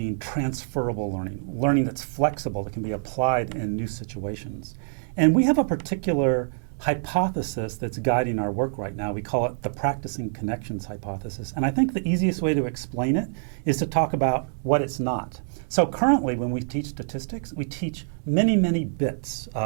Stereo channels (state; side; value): silent; left; digital silence